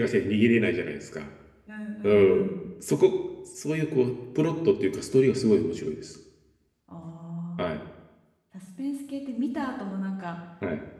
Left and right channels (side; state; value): both; identical; correlation 1.00